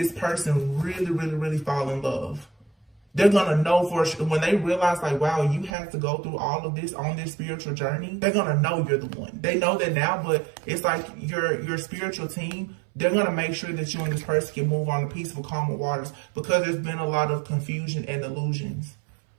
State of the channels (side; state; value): left; drops out; at 5.8 s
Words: person really, really, really fall in love. They're going to know for sure, when they realize like, wow, you had to go through all of this on this spiritual journey, they're going to know you're the one. They know that now, but it's like your spiritual team, they're going to make sure that you and this person can move on to peaceful, calmer waters, because there's been a lot of confusion and illusions.